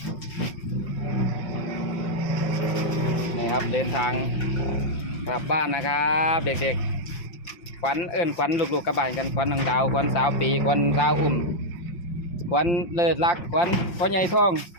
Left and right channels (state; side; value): late; right; 5.8 ms